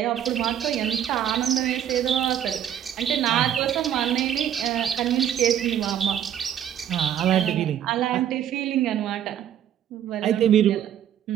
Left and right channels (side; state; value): left; quieter; 10.1 dB